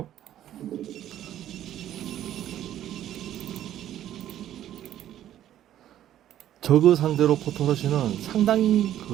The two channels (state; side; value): quieter; left; 11.9 dB